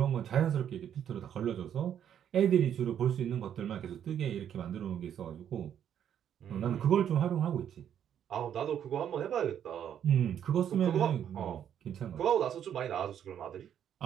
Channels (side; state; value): left; quieter; 9.4 dB